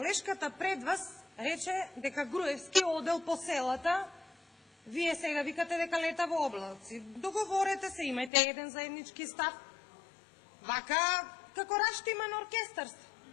пред вас рече дека Груевски одел по селата, вие сега викате дека лета во облаци. Договорете се, имајте еден заеднички став. Вака, како раштиман оркестарство.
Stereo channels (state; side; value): drops out; right; at 8.3 s